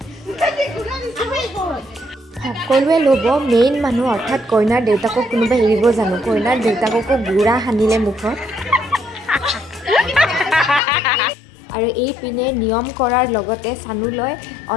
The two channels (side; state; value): right; drops out; at 10.8 s